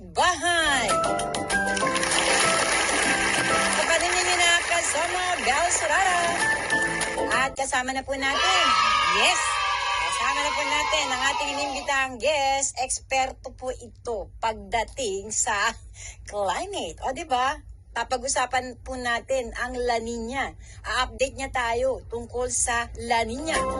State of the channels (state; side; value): identical; both; correlation 1.00